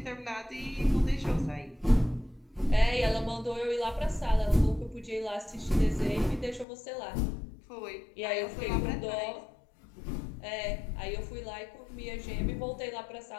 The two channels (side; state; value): right; drops out; at 6.7 s